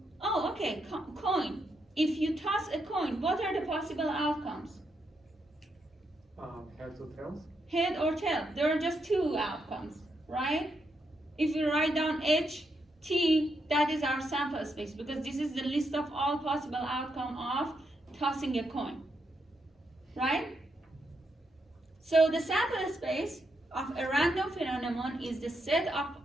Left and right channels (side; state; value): both; normal; correlation 0.81